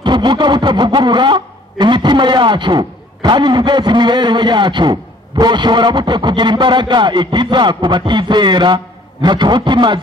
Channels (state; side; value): normal; both; correlation 0.56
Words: tuvuga butavugurura imitima yacu kandi nibweze imibereho yacu, boshobora bute kugira imbaraga ikiza ku batizera? Ntaco